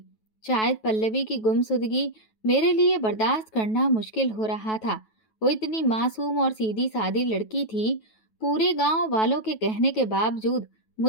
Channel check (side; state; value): right; late; 9.2 ms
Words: शायद पल्लवी की गुमसुदगी मेरे लिए बर्दाश्त करना मुश्किल हो रहा था। वो इतनी मासूम और सीधी सादी लड़की थी। पूरे गांव वालों के कहने के बावजूद